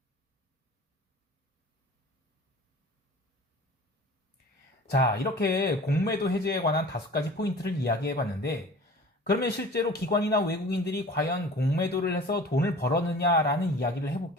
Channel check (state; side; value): normal; both; correlation 0.42